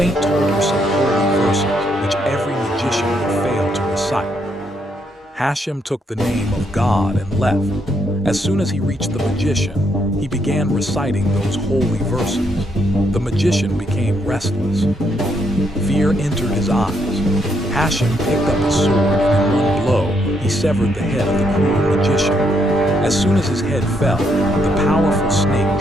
told her some holy verses, which every magician would fail to recite. Hashem took the name of God and left. As soon as he reached the magician, he began reciting those holy verses. The magician became restless. Fear entered his eyes. Hashem picked up his sword, and in one blow, he severed the head of the cruel magician. As soon as his head fell, the powerful snake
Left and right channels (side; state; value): both; normal; correlation 0.75